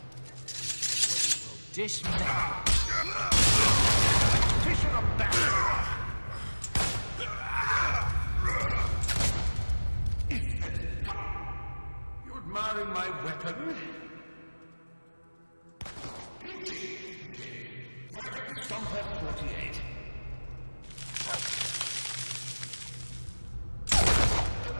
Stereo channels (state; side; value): inverted; both; correlation -1.00